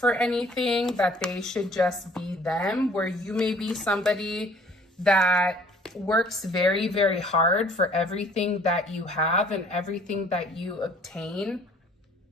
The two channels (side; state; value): both; normal; correlation 0.55